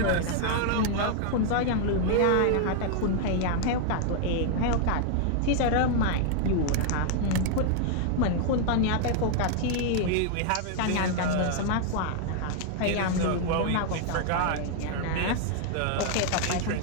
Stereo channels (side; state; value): both; different; correlation 0.00